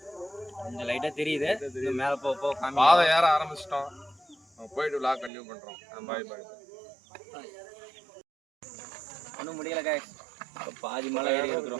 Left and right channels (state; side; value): drops out; left; at 5.3 s